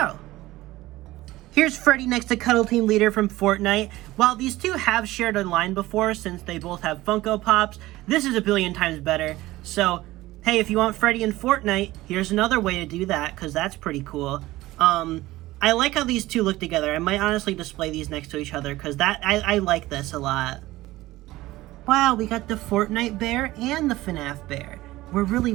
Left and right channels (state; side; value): quieter; left; 17.7 dB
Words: Here's Freddy next to Cuddle Team Leader from Fortnite. While these two have shared a line before, since they both have Funko Pops, this is a billion times better. So, hey, if you want Freddy in Fortnite, here's another way to do that, because that's pretty cool. I like how these two look together. I might honestly display these next to each other, because I like this a lot. Wow, we got the Fortnite bear and the FNAF bear. We're really